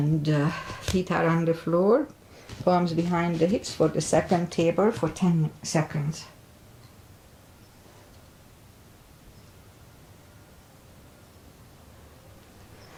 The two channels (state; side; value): identical; both; correlation 1.00